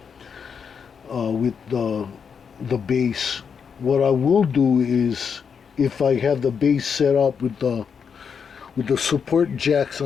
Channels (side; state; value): right; quieter; 6.6 dB